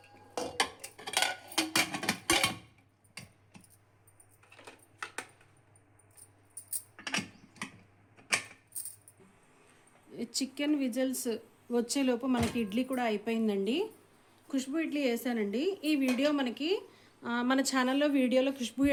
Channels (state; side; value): identical; both; correlation 1.00